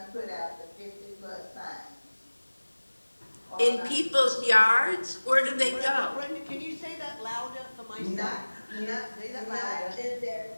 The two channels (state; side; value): inverted; both; correlation -1.00